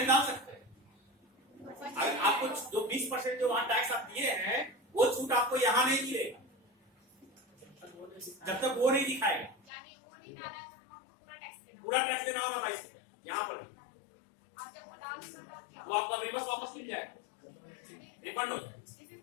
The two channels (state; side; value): drops out; right; at 9.6 s